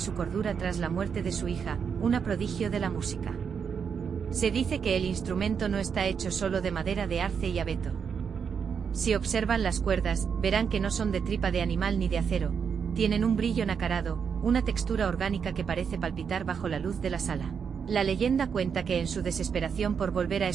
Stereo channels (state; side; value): quieter; left; 6.7 dB